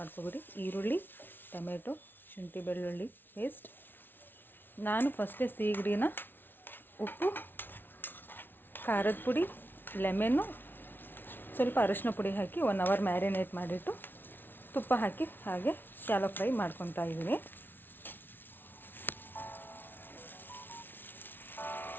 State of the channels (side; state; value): right; late; 0.099 ms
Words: ಈರುಳ್ಳಿ, ಟೊಮೆಟೊ, ಶುಂಠಿ ಬೆಳ್ಳುಳ್ಳಿ ಪೇಸ್ಟ್. ನಾನು ಫಸ್ಟೇ ಸೀಗಡಿನ ಉಪ್ಪು, ಖಾರದ ಪುಡಿ, ಲೆಮೆನ್ನು, ಸ್ವಲ್ಪ ಅರಿಶಿನ ಪುಡಿ ಹಾಕಿ 1 ಅವರ್ ಮ್ಯಾರಿನೇಟ್ ಮಾಡಿಟ್ಟು ತುಪ್ಪ ಹಾಕಿ ಹಾಗೆ ಶಾಲೋ ಫ್ರೈ ಮಾಡ್ಕೊತಾ ಇದ್ದೀನಿ.